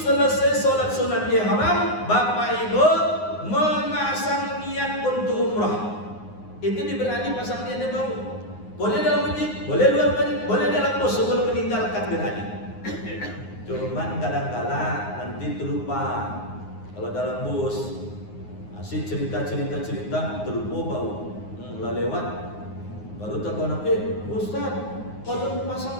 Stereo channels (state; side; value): late; right; 9.6 ms